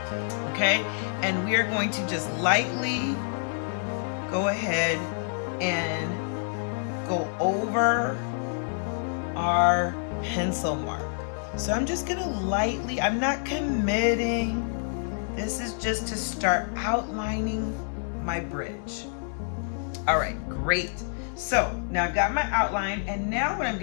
Okay, and we are going to just lightly go ahead and go over our pencil mark. So I'm just gonna lightly, I'm not committing. This is just to start outlining my bridge. All right, great. So now I've got my outline, and now what I'm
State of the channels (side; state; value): right; silent; 60 dB below the other